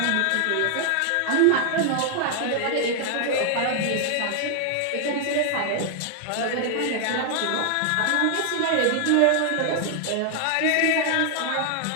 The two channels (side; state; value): both; different; correlation 0.00